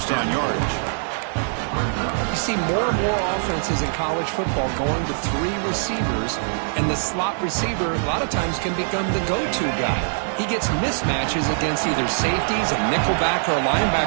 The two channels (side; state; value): left; silent; digital silence